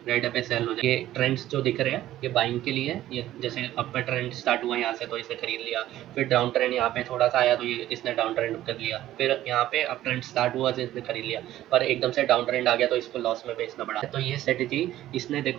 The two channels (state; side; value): quieter; left; 13.9 dB